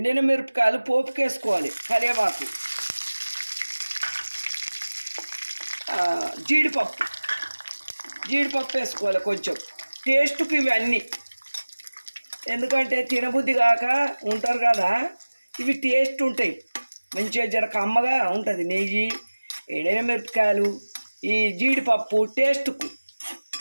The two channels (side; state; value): both; inverted; correlation -1.00